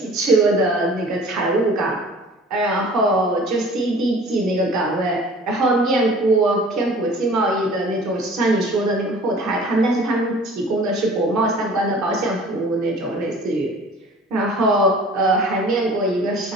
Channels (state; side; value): normal; both; correlation 0.47